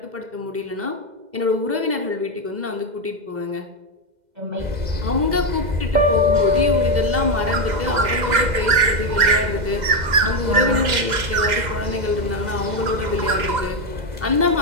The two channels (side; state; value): left; late; 2.0 ms